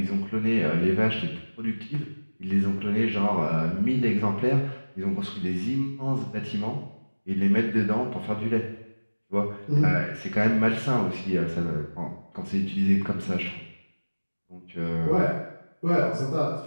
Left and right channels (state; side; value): inverted; both; correlation -1.00